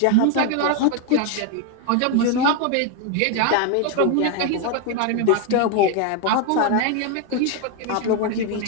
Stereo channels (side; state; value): both; different; correlation 0.01